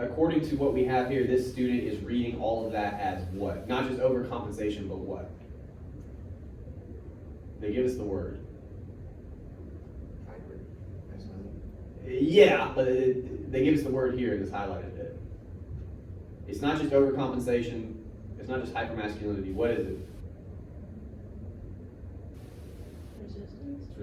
according to what we have here, this student is reading all of that as what? Not just overcompensation, but what? They give us the word. Hybrid. That's not Yeah, but they give us the word here in this highlighted bit. It's not just overcompensation. It's not just hypermasculinity. What is it? Resistance. It's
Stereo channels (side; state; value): both; identical; correlation 1.00